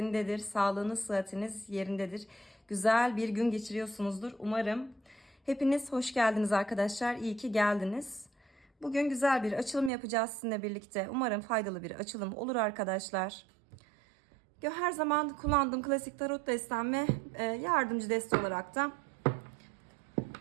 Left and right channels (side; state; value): left; drops out; at 9.9 s